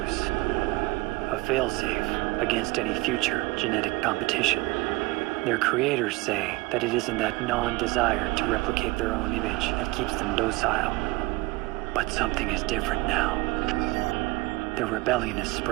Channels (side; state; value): left; quieter; 22.6 dB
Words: A failsafe against any future genetic competition. Their creators say that it isn't that non-desire to replicate their own image that keeps them docile. But something is different now. Their rebellion is